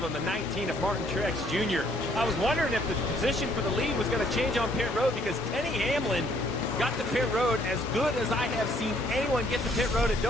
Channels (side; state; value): both; normal; correlation 0.65